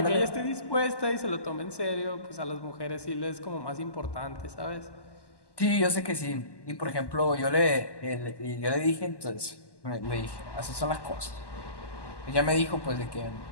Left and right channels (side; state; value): right; late; 1.1 ms